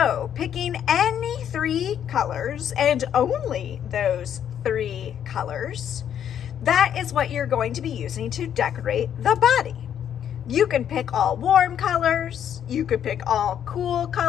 picking any 3 colors and only those 3 colors, that is what you're going to be using to decorate the body. You can pick all warm colors. You could pick all cool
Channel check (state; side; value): quieter; right; 9.4 dB